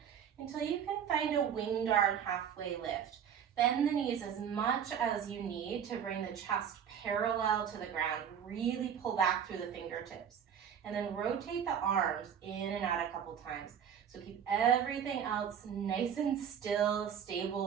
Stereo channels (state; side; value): quieter; left; 8.2 dB